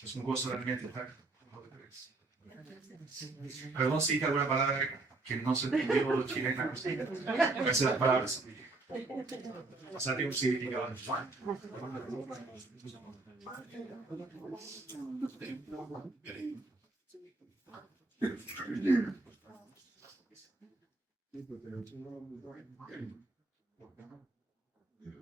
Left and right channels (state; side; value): quieter; left; 3.3 dB